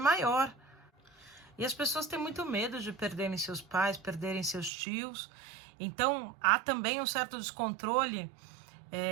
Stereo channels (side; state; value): left; drops out; at 4.7 s